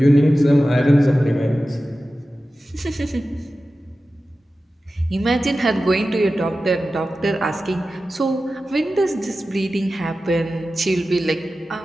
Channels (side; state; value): both; normal; correlation 0.94